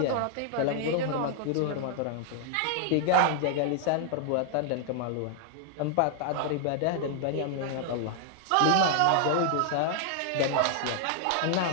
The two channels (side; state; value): both; different; correlation 0.00